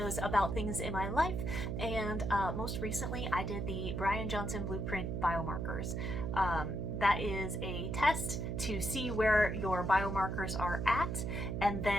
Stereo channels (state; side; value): noise; right; hum, 2 dB below the sound